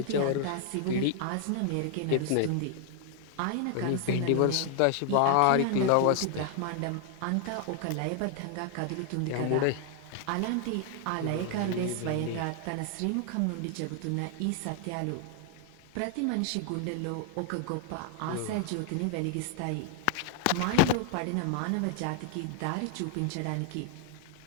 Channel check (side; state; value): both; different; correlation 0.00